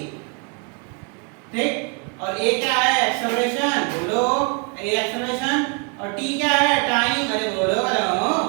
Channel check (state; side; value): quieter; left; 34.8 dB